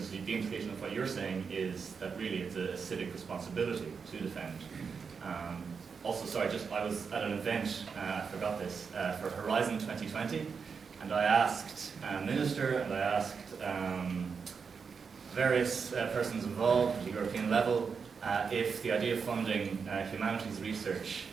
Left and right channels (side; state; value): left; quieter; 5.7 dB